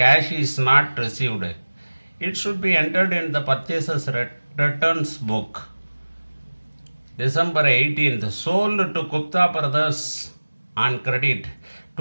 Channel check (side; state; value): both; inverted; correlation -1.00